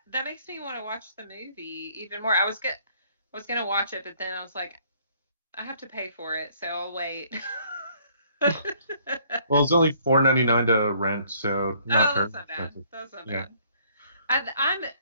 makes me want to watch the movie even more. I was gonna watch it, but then I was like, I have to pay for it, so I'll wait. Well, it's only $4.99 to rent, so not that's not bad. That's not bad.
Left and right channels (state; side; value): inverted; both; correlation -0.62